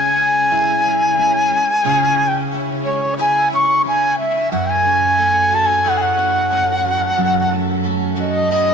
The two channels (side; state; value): both; normal; correlation 0.62